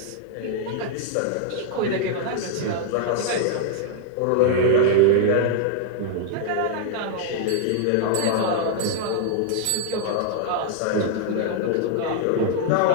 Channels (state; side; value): different; both; correlation -0.01